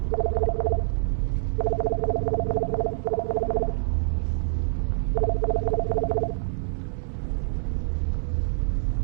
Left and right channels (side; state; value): left; silent; 61 dB below the other